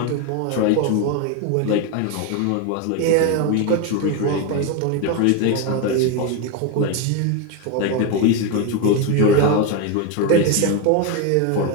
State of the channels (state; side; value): different; both; correlation 0.02